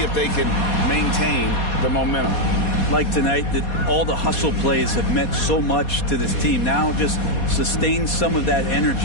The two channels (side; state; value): right; late; 4.2 ms